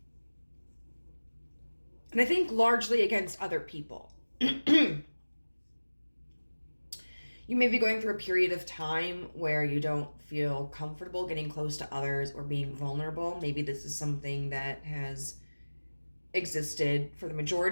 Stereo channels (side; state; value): both; inverted; correlation -1.00